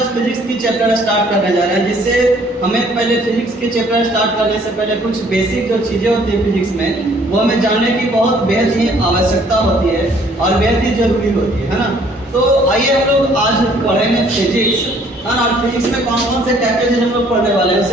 फिजिक्स की चैप्टर स्टार्ट करने जा रहे हैं, जिससे हमें पहले फिजिक्स की चैप्टर स्टार्ट करने से पहले कुछ बेसिक जो चीज़ें होती है फिजिक्स में, वो हमें जानने की बहुत बेहद ही आवश्यकता होती है और बेहद ही जरूरी होती है ना। तो आइए हम लोग आज पढ़ेंगे फिजिक्स, है ना। और फिजिक्स में कौन कौन से क्या क्या चीज़ हम लोग पढ़ने वाले हैं,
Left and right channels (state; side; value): normal; both; correlation 0.60